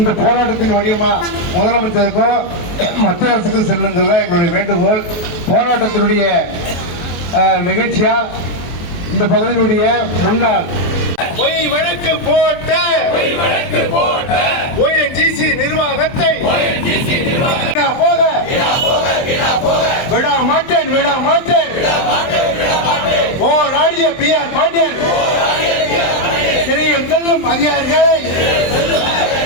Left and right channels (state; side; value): late; right; 23 ms